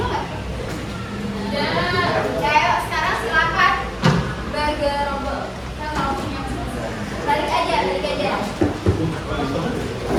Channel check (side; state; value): both; identical; correlation 1.00